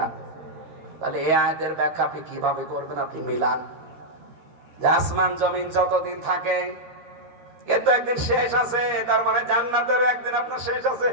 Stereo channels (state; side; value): late; left; 13 ms